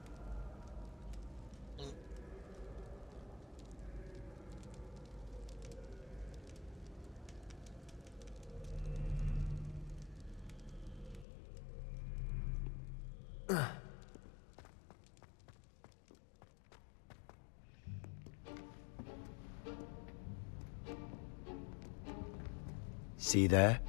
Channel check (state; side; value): drops out; right; at 11.2 s